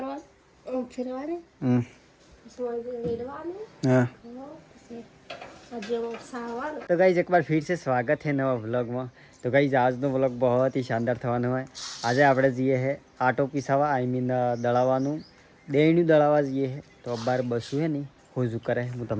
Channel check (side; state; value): both; identical; correlation 1.00